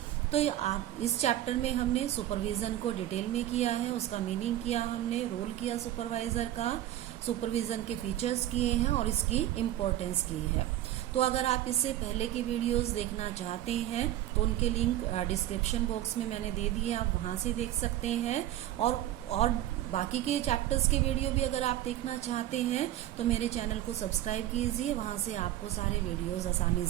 तो इस चैप्टर में हमने सुपरविज़न को डिटेल में किया है, उसका मीनिंग किया हमने, रोल किया सुपरवाइज़र का, सुपरविज़न के फीचर्स किए हैं और इसकी इम्पोर्टेंस की है। तो अगर आप इससे पहले की वीडियोस देखना चाहते हैं तो उनके लिंक डिस्क्रिप्शन बॉक्स में मैंने दे दिए, आप वहां से देख सकते हैं। और बाकी के चैप्टर्स के वीडियो भी अगर आप देखना चाहते हैं तो मेरे चैनल को सब्सक्राइब कीजिए, वहां से आपको सारे वीडियोस आसानी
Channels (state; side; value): quieter; left; 13.3 dB